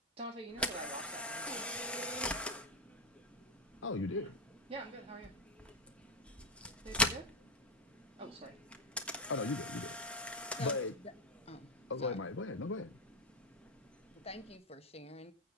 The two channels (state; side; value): normal; both; correlation 0.05